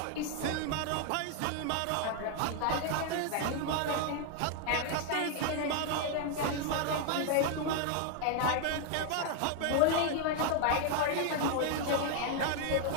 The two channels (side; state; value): both; different; correlation 0.00